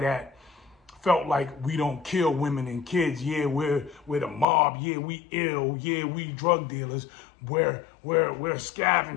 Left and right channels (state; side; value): drops out; right; at 4.5 s